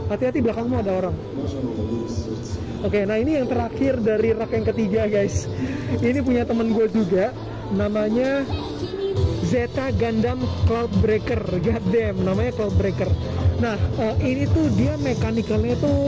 Hati-hati, belakangmu ada orang. Oke, nah ini yang terakhir dari rak yang ketiga guys. Ini punya temen gue juga, namanya Zeta Gundam Cloudbreaker. Goddamn, namanya Cloudbreaker. Nah, ini tuh dia mekanikalnya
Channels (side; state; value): both; identical; correlation 1.00